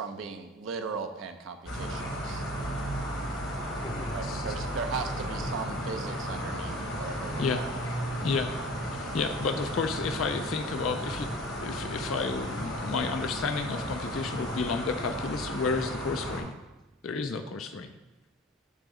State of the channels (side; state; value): both; normal; correlation 0.41